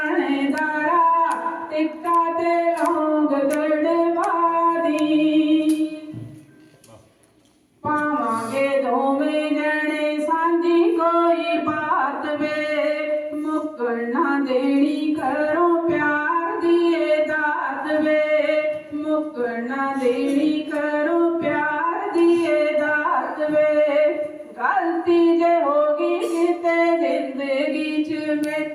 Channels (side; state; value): both; identical; correlation 1.00